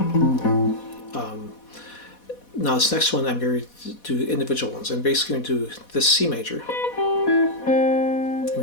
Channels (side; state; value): right; late; 4.1 ms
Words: Now this next one, I'm going to do individual ones. I'm basically going to do this C major. I'm